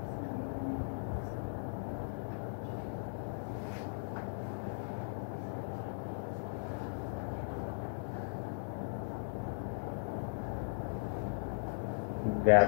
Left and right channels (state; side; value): silent; right; 52 dB below the other